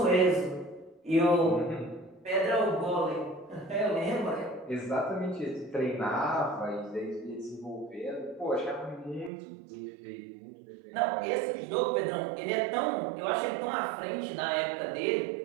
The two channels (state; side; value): drops out; left; at 9.3 s